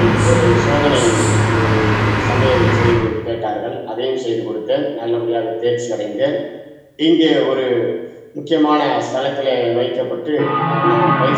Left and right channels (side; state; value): both; identical; correlation 1.00